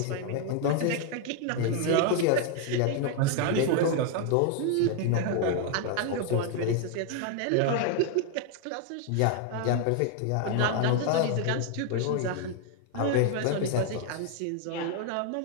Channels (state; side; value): different; both; correlation 0.00